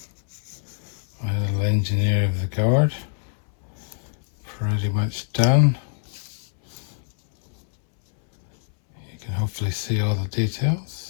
my little engineer of the guard, pretty much done. You can hopefully see all the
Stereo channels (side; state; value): right; silent; 62 dB below the other